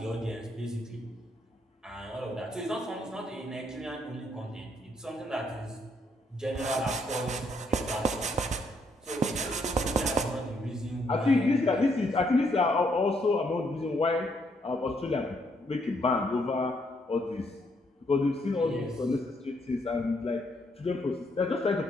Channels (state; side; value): normal; both; correlation 0.72